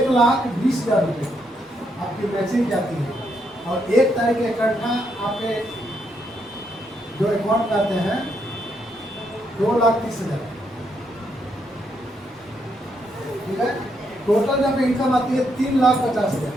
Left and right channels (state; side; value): normal; both; correlation 0.77